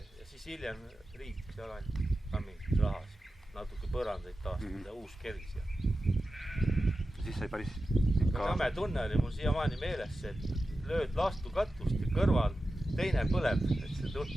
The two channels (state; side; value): normal; both; correlation 0.93